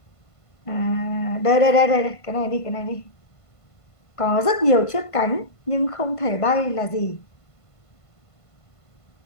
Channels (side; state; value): right; late; 1.5 ms